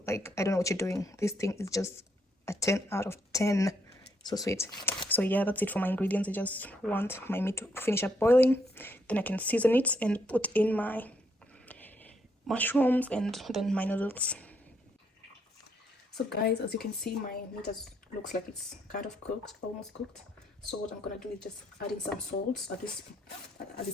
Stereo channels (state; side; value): normal; both; correlation 0.74